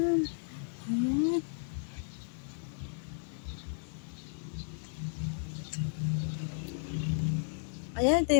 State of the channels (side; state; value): right; silent; digital silence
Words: ayan. Ayan, ito